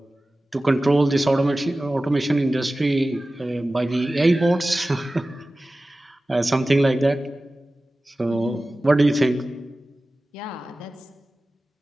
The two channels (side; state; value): both; normal; correlation 0.96